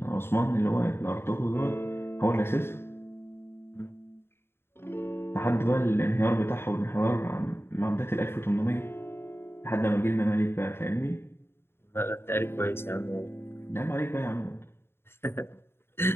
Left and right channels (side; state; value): right; late; 0.11 ms